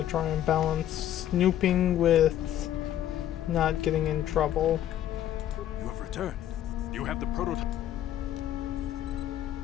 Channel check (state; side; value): quieter; right; 11.6 dB